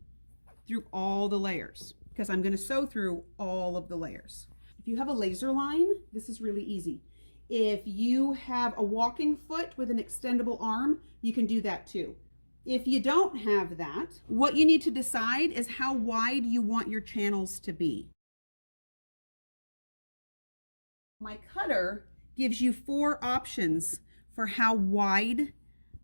through all the layers because I'm going to sew through all of the layers. If you have a laser line, this is really easy. If you have a walking foot with an extendable arm, you can do that too. If you don't have that, what you need to decide is how wide you want your channels to be. My cutter gives you 4 options for how wide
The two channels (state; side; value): inverted; both; correlation -1.00